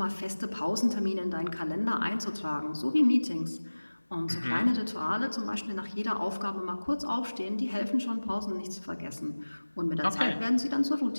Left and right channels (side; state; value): both; inverted; correlation -1.00